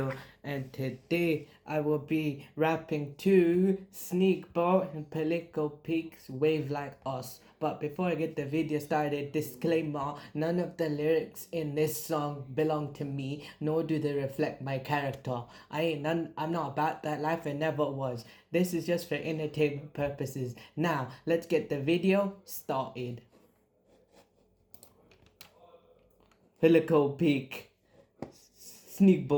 and today I will be rapping to Sneakbo and Political Peaks Wave Like Us. But before I get the video started, disclaimer: none of the lyrics in this song belong to me, nor do they reflect my character. I'm not about that life and never was. This is just for entertainment purposes. Now, let's get the video started. Helico peak,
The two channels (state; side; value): identical; both; correlation 1.00